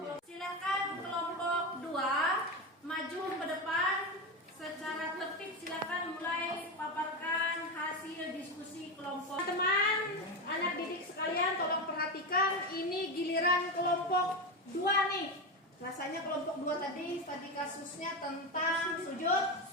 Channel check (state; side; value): normal; both; correlation 0.16